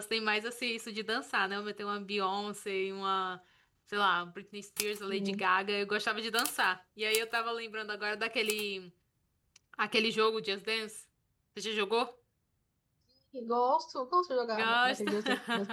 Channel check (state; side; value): identical; both; correlation 1.00